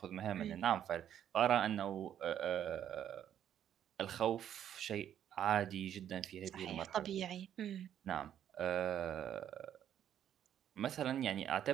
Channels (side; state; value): left; quieter; 10.1 dB